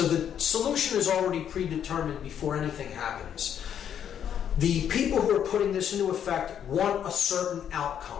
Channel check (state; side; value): quieter; right; 9.1 dB